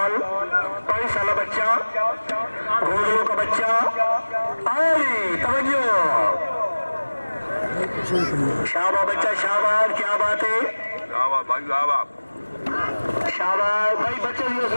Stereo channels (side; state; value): both; inverted; correlation -1.00